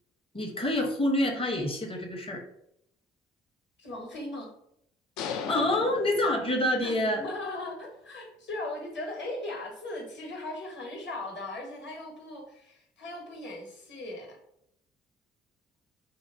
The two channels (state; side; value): normal; both; correlation 0.48